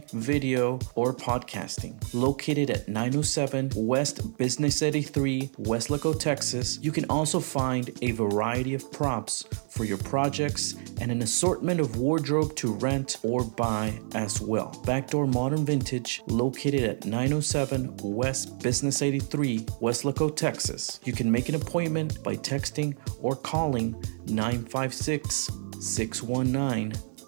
video, or podcasting. Located at 907 West Business 83, Weslaco, Texas, you can also find a variety of props for your projects and an assortment of wardrobe to rent or buy as well. Backdoor Modern Vintage, located at 907 West Business 83, Weslaco, Texas. You can make an appointment by texting or calling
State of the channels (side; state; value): left; silent; 59 dB below the other